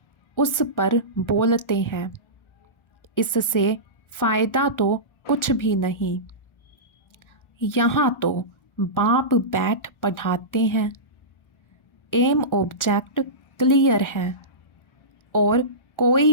उस पर बोलते हैं। इससे फ़ायदा तो कुछ भी नहीं। यहाँ तो बाप बैठ पढ़ाते हैं। एम ऑब्जेक्ट क्लियर है। और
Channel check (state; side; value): late; right; 1.4 ms